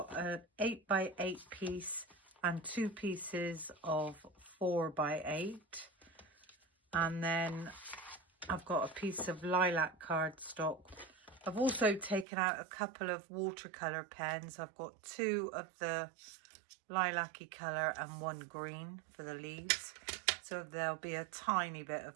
an 8x8 piece and 2 pieces of 4x8, and then I've got a piece of lilac cardstock. I've also taken out a couple of watercolour pens. I've got 2 of the lilac-y colour and 1 green for the leaves, so there'll be a tiny bit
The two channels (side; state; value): left; drops out; at 12.2 s